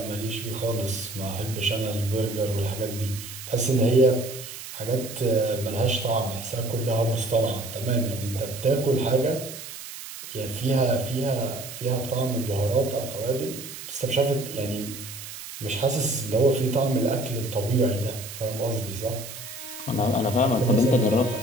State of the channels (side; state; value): right; noise; hiss, 11 dB below the sound